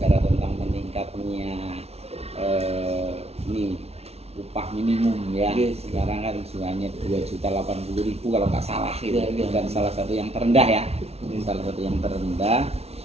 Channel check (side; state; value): left; late; 0.30 ms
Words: tentang meningkatnya upah minimum ya. Sekarang kan hanya 2.080.000 kalau nggak salah gitu. Dan salah satu yang terendah ya. Salah satu yang terendah.